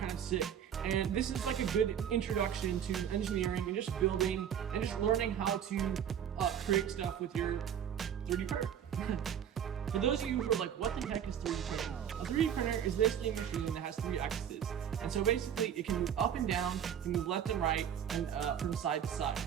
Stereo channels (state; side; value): quieter; left; 9.0 dB